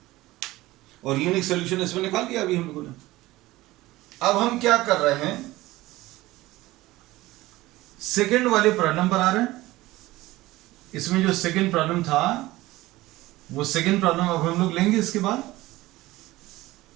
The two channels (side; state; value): left; quieter; 18.2 dB